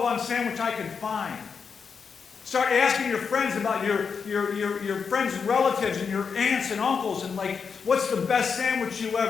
sandwich I can find? Start asking your friends about your friends and relatives and your aunts and uncles, and like, what's the best sandwich you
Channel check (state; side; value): quieter; right; 5.9 dB